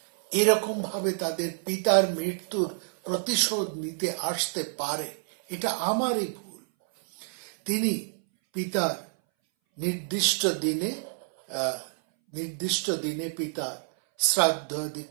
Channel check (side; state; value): left; silent; 59 dB below the other